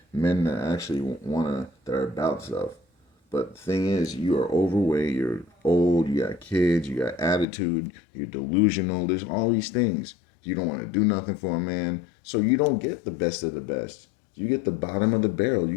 men that actually that are about stuff. But the thing is, you are overweight, you're old, you got kids, you got attitude, you're delusional. There's all these things. You don't want to do nothing for a man. So you don't get the best of the best. You get the bottom of the barrel. You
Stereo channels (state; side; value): drops out; right; at 7.5 s